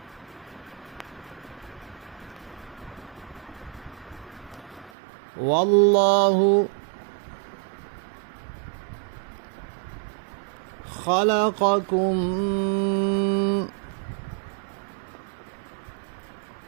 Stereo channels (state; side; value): drops out; left; at 4.9 s